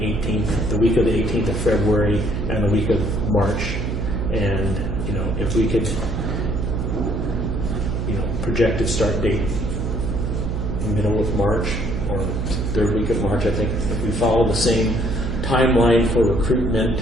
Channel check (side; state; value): right; noise; hum, 2 dB below the sound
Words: week of the 18th of February and the week of March, and if we could projected start date middle of March or third week of March. I think if we follow the same timeline for recruitment,